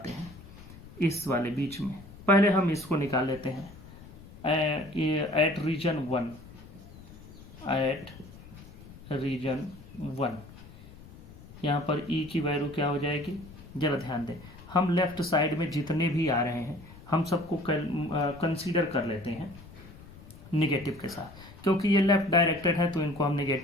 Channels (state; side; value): noise; left; rumble, 18 dB below the sound